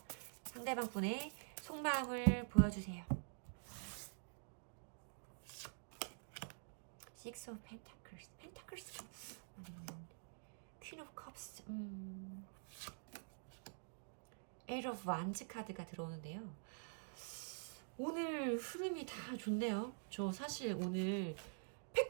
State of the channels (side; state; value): left; silent; digital silence